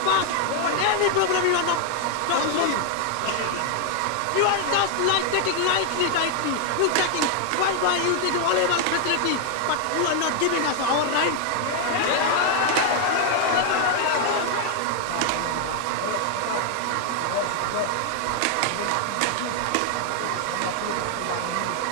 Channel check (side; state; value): both; different; correlation 0.00